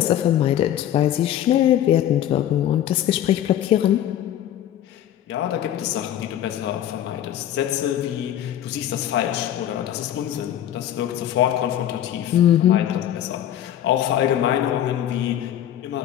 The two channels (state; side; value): quieter; right; 11.3 dB